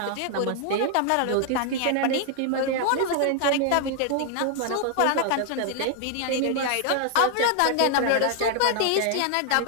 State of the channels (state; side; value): different; both; correlation 0.00